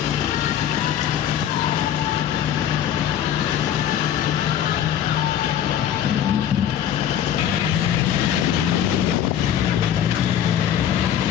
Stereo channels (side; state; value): right; quieter; 10.1 dB